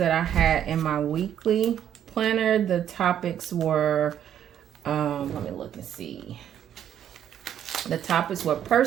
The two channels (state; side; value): quieter; left; 10.0 dB